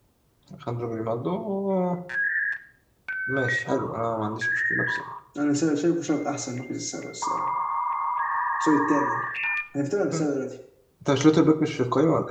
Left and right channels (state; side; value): identical; both; correlation 1.00